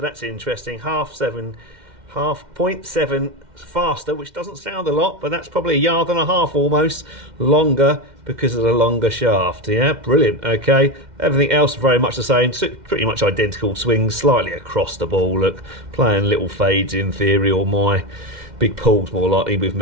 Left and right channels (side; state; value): left; late; 2.1 ms